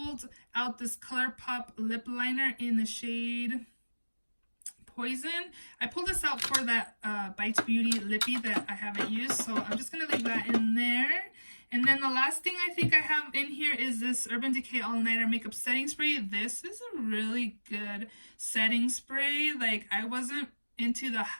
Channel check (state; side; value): inverted; both; correlation -1.00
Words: out this ColourPop lip liner in the shade Poison. I pulled this out for that Bites Beauty lippy that I haven't used, so I'm just going to leave that in there. And then the last thing I think I have in here is this Urban Decay All Nighter Makeup Setting Spray. This is a really good setting spray. Like, I wasn't into the